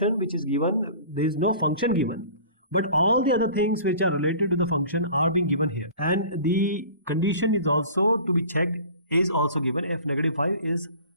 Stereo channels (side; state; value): both; inverted; correlation -0.44